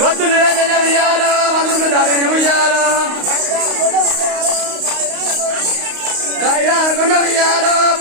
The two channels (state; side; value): late; left; 32 ms